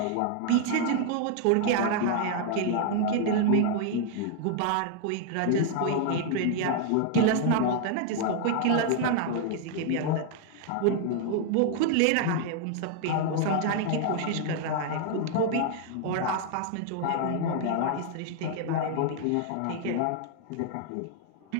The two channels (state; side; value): different; both; correlation 0.00